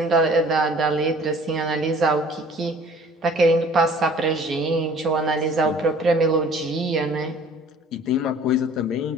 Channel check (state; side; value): normal; both; correlation 0.51